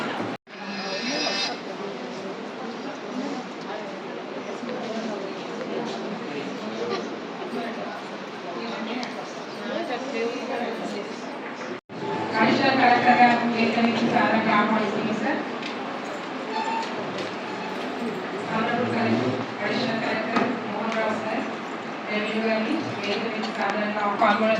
అడిషనల్ కలెక్టర్ గారు వేదికలకి సాధారణ ఆహ్వానిస్తున్నాం sir. Additional collector Mohan Rao sir revenue గారిని వేదికలకి సాధారణంగా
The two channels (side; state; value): both; identical; correlation 1.00